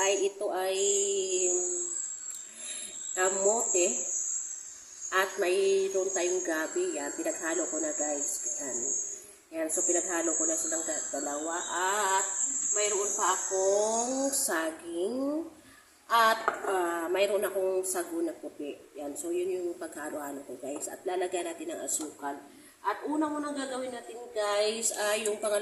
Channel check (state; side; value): identical; both; correlation 1.00